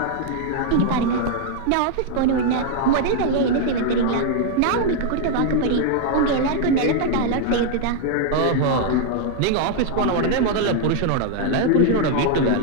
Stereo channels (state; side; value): different; both; correlation 0.00